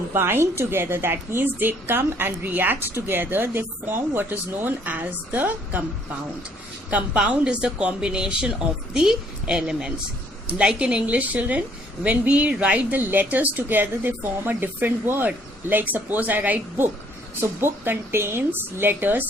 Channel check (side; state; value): both; normal; correlation 0.63